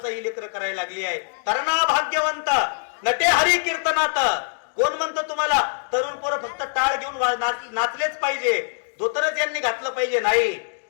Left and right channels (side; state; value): right; silent; digital silence